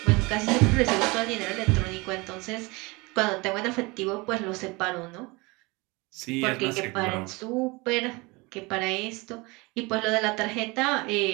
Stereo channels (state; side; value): quieter; left; 25.3 dB